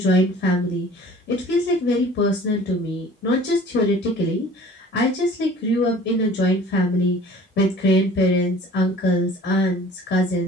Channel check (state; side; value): normal; both; correlation 0.47